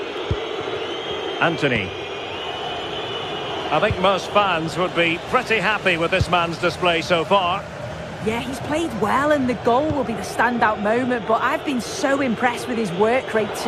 Anthony. I think most fans would be pretty happy with this man's display so far. Yeah, he's played well, and the goal will be the standout moment, but I've been so impressed with his work rate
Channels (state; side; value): identical; both; correlation 1.00